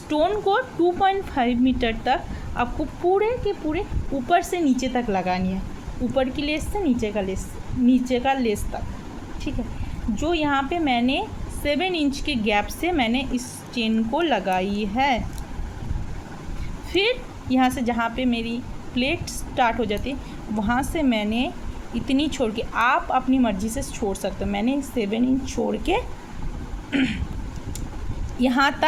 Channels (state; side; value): identical; both; correlation 1.00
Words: को 2.5 मीटर तक आपको पूरे के पूरे ऊपर से नीचे तक लगानी है, ऊपर की लेस से नीचे का लेस तक। ठीक है, जो यहाँ पे मैंने 7 इंच के गैप से मैंने इस चेन को लगाई है। फिर यहाँ से जहाँ पे मेरी प्लेट स्टार्ट हो जाती है वहाँ से मैंने इतनी छोड़ के, आप अपनी मर्ज़ी से छोड़ सकते हो, मैंने 7 इंच छोड़ के यहाँ